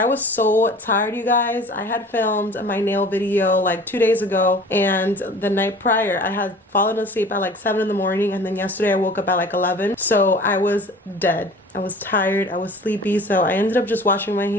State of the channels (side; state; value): both; normal; correlation 0.44